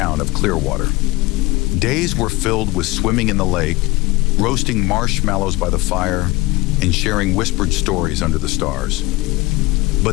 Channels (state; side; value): quieter; right; 21.1 dB